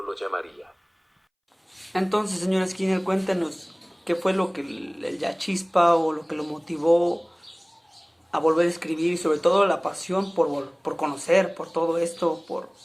lo llamaría. Entonces, señor Skinner, cuéntenos qué fue lo que la chispa o lo que lo motivó a volver a escribir y sobre todo la pasión por conocer, por todo esto,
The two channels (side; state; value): both; identical; correlation 1.00